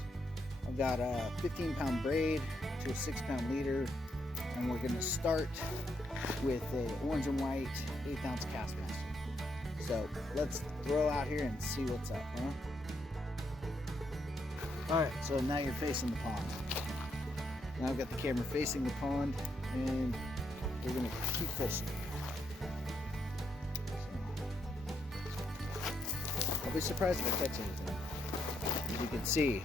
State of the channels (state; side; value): normal; both; correlation 0.77